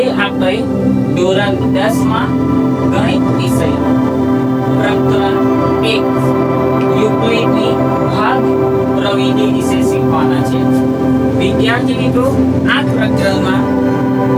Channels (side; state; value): both; identical; correlation 1.00